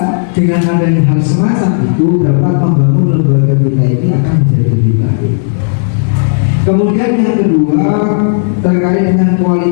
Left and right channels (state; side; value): silent; right; digital silence